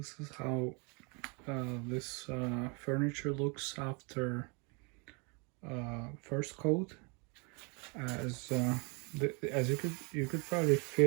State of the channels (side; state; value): left; quieter; 32.3 dB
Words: is how this furniture looks after first coat. As you could probably